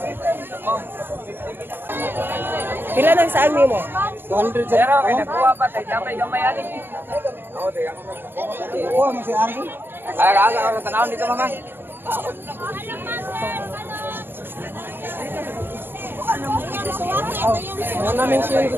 Pila nang saan mo? 200 sa. Pero kay nakuha pa tay gamay ani. Oo, tay. Oo, mo si Argo. Aga ako tanawon dito mama. Ano namin siya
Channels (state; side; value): late; left; 0.10 ms